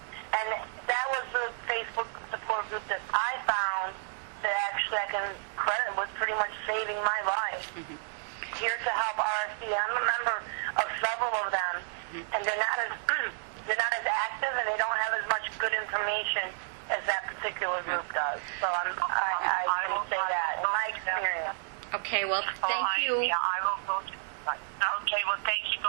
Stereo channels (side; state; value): left; silent; digital silence